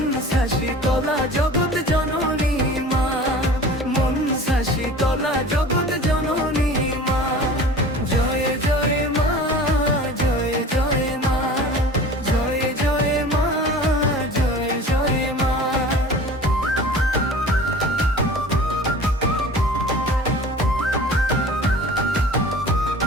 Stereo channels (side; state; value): both; normal; correlation 0.41